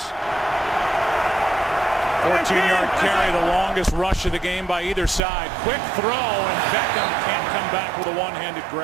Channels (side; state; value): left; drops out; at 5.2 s